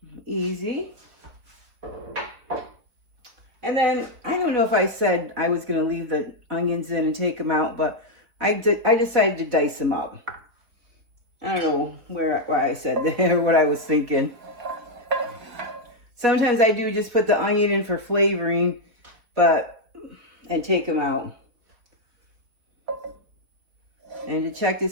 easy. And then, I don't know if I said I was going to leave the onions in and take them out, but I decided to dice them up. I don't know why I said that or what I was thinking. Sometimes I do just put the onion in for flavoring, and take them out. And to check to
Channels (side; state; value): left; late; 4.2 ms